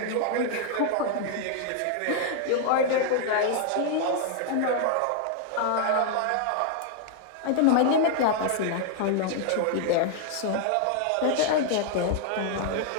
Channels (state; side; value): different; both; correlation 0.00